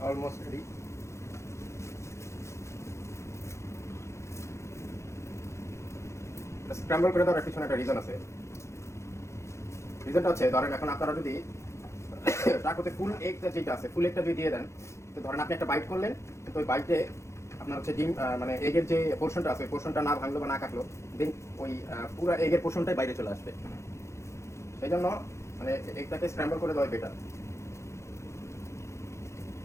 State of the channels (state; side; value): late; right; 0.14 ms